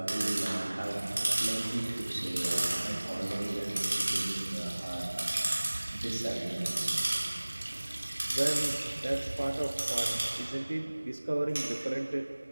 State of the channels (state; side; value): inverted; both; correlation -1.00